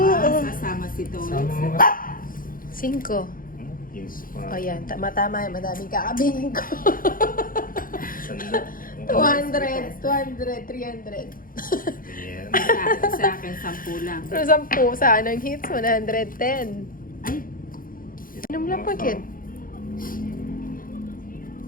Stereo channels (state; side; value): late; right; 0.41 ms